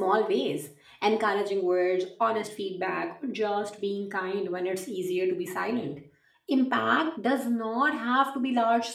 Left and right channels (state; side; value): identical; both; correlation 1.00